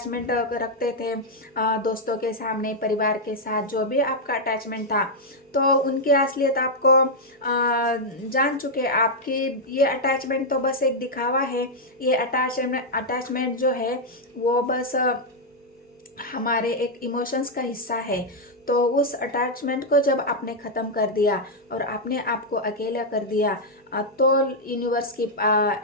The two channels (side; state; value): both; normal; correlation -0.03